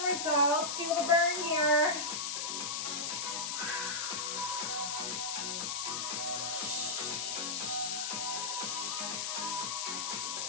results, feel the burn here.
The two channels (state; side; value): noise; left; hiss, 1 dB below the sound